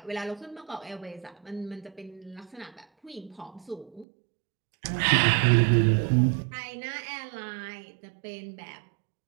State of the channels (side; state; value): left; drops out; at 4.0 s